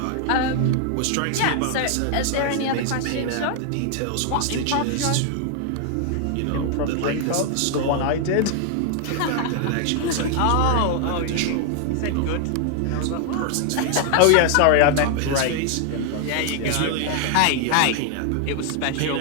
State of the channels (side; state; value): both; different; correlation 0.00